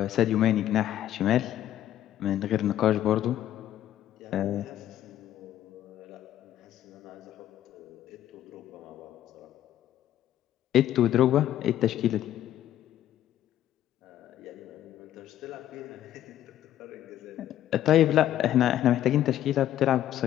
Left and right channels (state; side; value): quieter; right; 12.0 dB